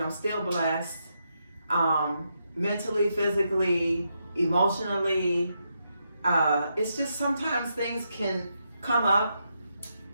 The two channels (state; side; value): inverted; both; correlation -0.82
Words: I'm still blessed. Mentally, physically, emotionally. It's just sometimes things can come up,